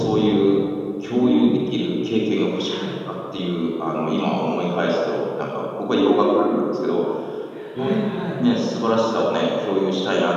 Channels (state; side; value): identical; both; correlation 1.00